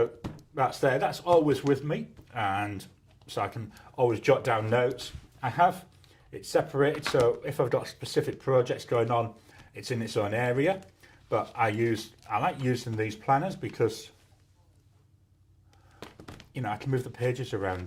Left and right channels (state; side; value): identical; both; correlation 1.00